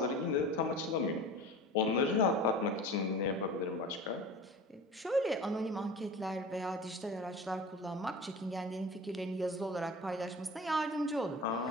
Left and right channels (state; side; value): normal; both; correlation 0.37